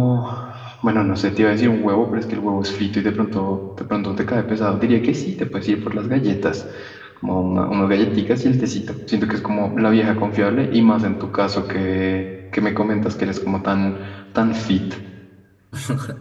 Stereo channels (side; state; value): both; identical; correlation 1.00